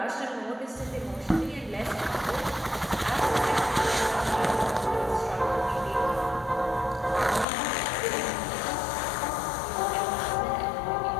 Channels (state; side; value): drops out; right; at 7.5 s